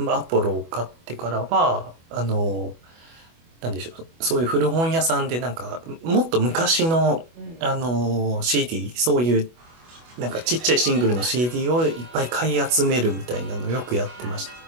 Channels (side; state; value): left; late; 24 ms